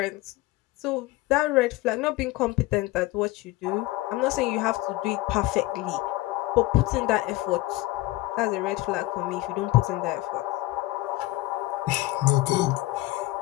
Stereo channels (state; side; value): quieter; right; 18.8 dB